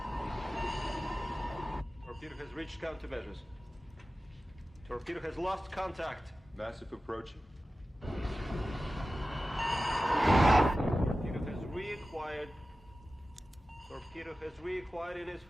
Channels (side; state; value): both; normal; correlation 0.95